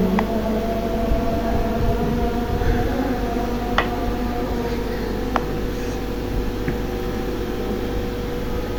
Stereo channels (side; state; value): both; identical; correlation 1.00